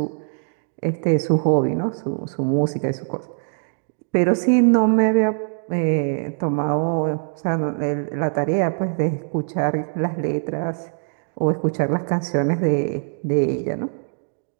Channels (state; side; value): silent; left; digital silence